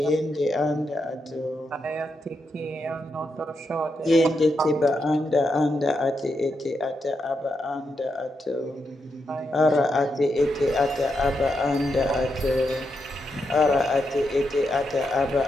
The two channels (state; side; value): normal; both; correlation 0.83